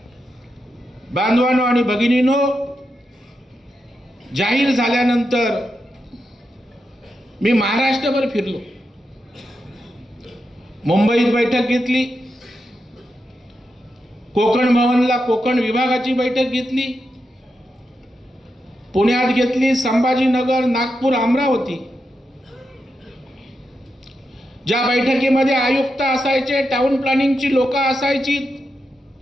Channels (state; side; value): normal; both; correlation 0.86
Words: बांधवांनो आणि भगिनींनो, जाहीर झाल्यानंतर मी महाराष्ट्रभर फिरलो, मुंबईत बैठक घेतली, कोकण भवनला कोकण विभागाची बैठक घेतली, पुण्यात घेतली, संभाजीनगर, नागपूर, अमरावती। ज्या बैठकीमध्ये आयुक्त असायचे, टाउन प्लॅनिंगची लोक असायची,